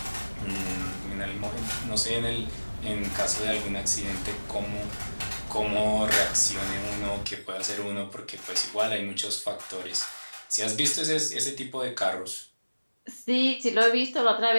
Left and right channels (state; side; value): inverted; both; correlation -1.00